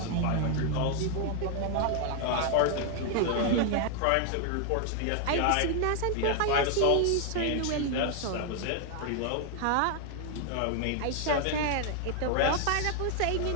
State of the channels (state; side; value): different; both; correlation 0.00